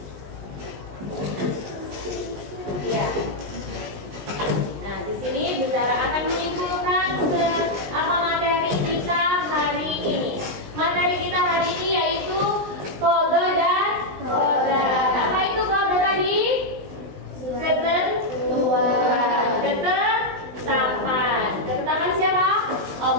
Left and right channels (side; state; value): left; late; 19 ms